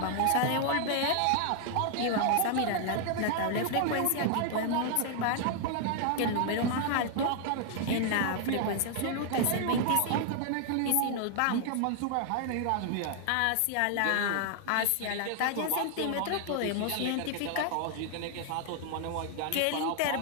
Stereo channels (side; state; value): both; different; correlation 0.00